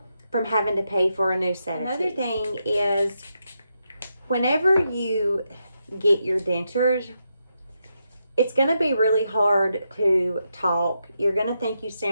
from having to pay for a new set of teeth. Another thing is, whenever you get your dentures, it's going to be really hard to talk. You're going to think you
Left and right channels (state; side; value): inverted; both; correlation -0.83